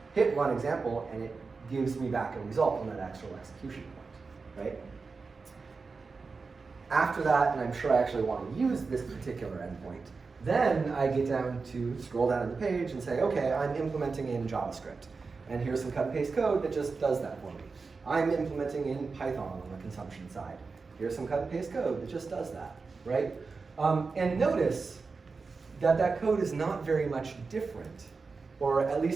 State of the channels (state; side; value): quieter; left; 4.5 dB